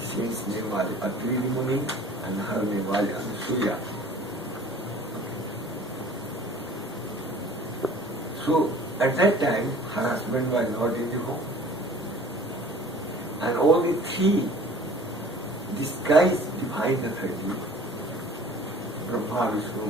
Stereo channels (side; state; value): both; normal; correlation 0.48